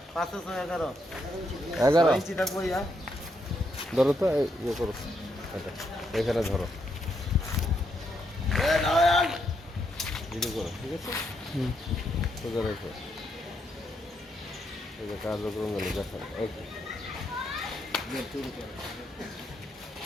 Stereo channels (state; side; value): normal; both; correlation 0.78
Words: 11 ইঞ্চি থাকবো ইয়া। ধরো তো ইয়ে করো, এটা এখানে ধরো, ভিডিও করো, ঠিক আছে? সোজা রেখো, এই যে কার্যক্রম গেলে দেখান। ওকে,